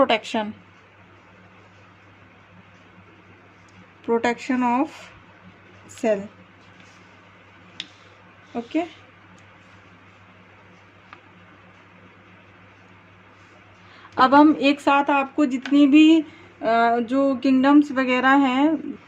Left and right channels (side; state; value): both; identical; correlation 1.00